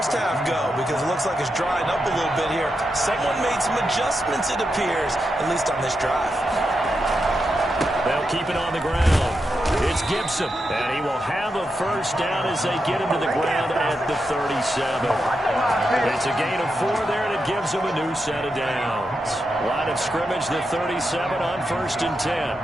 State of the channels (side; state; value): both; normal; correlation 0.86